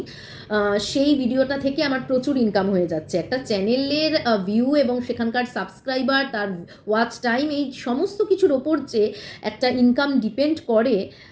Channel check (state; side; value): identical; both; correlation 1.00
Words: সেই ভিডিওটা থেকে আমার প্রচুর ইনকাম হয়ে যাচ্ছে। একটা চ্যানেলের ভিউ এবং সেখানকার সাবস্ক্রাইবার, তার ওয়াচ টাইম, এই সমস্ত কিছুর ওপর যে একটা ইনকাম ডিপেন্ড করে